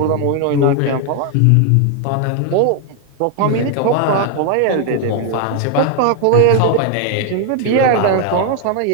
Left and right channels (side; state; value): both; different; correlation 0.01